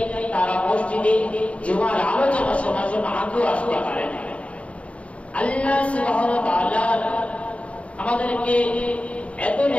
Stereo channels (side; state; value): right; late; 0.062 ms